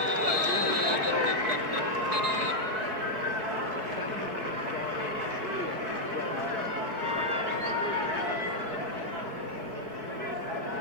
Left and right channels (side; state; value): left; late; 4.6 ms